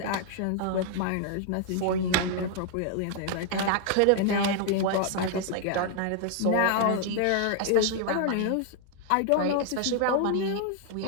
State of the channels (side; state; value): both; different; correlation 0.00